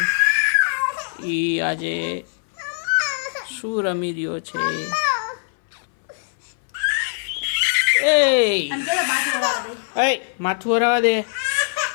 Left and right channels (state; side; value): silent; right; 61 dB below the other